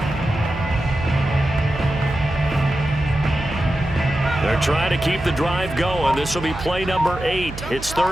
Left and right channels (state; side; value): noise; right; hum, 11 dB below the sound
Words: They're trying to keep the drive going. This will be play number 8. It's